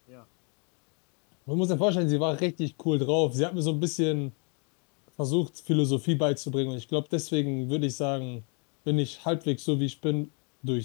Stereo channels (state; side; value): quieter; right; 37.0 dB